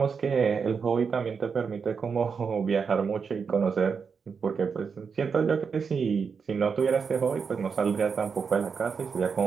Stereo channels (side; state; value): left; quieter; 5.8 dB